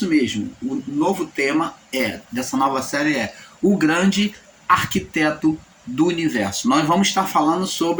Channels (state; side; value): identical; both; correlation 1.00